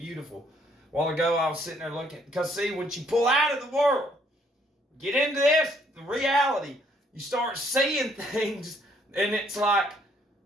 A while ago I was sitting there looking, because see, when you pull out of the world, get into this, the reality, you start seeing things, and it's like,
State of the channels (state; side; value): normal; both; correlation 0.66